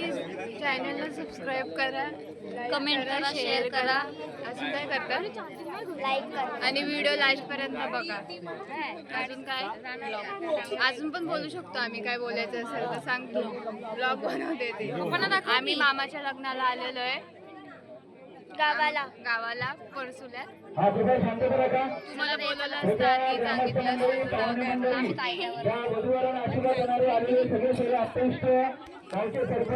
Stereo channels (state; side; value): identical; both; correlation 1.00